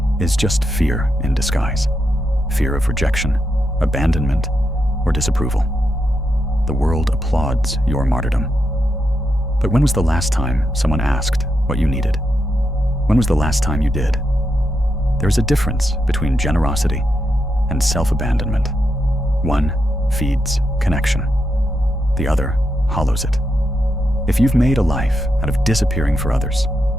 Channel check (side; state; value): both; normal; correlation 0.83